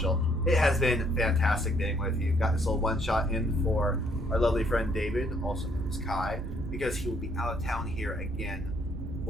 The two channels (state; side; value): noise; right; rumble, 9 dB below the sound